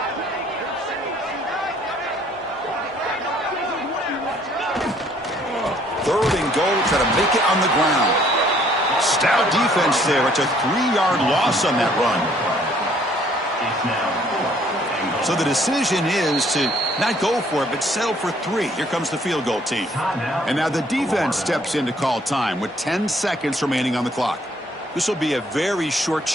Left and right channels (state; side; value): normal; both; correlation 0.62